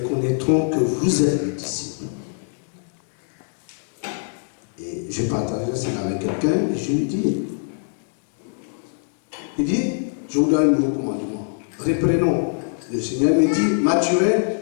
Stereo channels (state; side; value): silent; right; digital silence